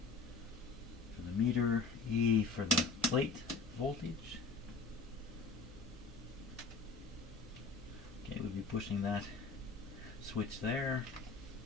for the meter, E for the plate voltage. Okay, we'll be pushing that switch there.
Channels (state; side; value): quieter; right; 3.9 dB